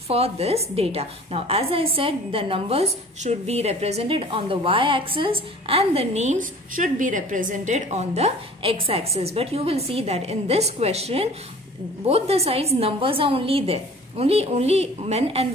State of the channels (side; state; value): both; normal; correlation 0.46